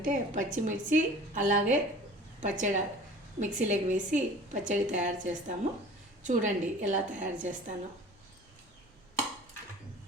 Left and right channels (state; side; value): normal; both; correlation 0.44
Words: పచ్చిమిర్చి అలాగే పచ్చడి మిక్సీలోకి వేసి పచ్చడి తయారు చేస్తాము. చూడండి ఎలా తయారు చేస్తానో.